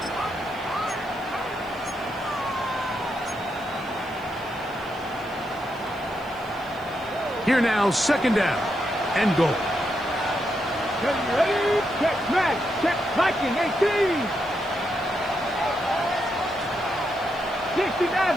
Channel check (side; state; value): left; noise; hiss, 26 dB below the sound